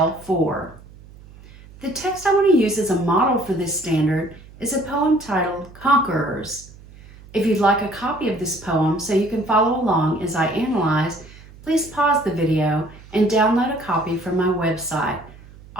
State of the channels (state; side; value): noise; right; hum, 21 dB below the sound